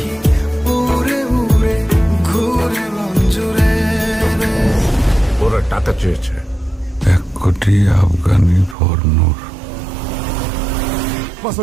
উড়ে উড়ে ঘুরে মঞ্জুরে রে। ওরা টাকা চেয়েছে 1 কোটি আফগানি ফর নূর।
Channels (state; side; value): drops out; left; at 8.8 s